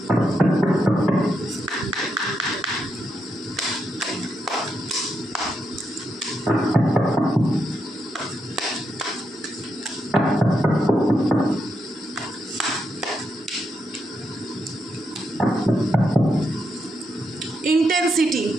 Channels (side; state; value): both; normal; correlation 0.82